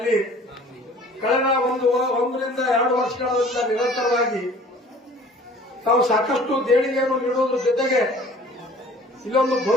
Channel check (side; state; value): both; normal; correlation 0.49